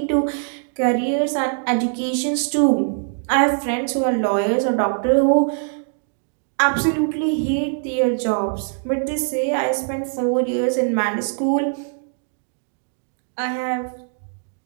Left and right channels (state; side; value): silent; left; 64 dB below the other